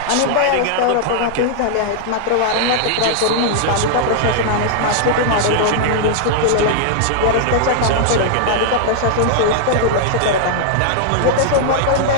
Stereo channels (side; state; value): both; different; correlation -0.01